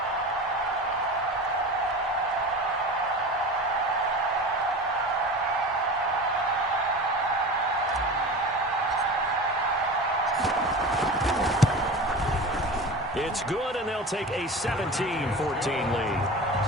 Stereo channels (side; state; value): both; normal; correlation 0.32